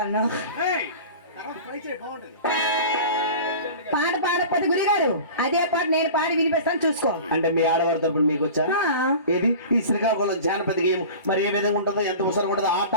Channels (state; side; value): inverted; both; correlation -0.37